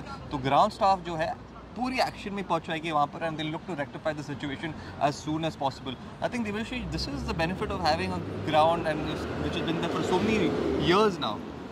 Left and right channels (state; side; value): identical; both; correlation 1.00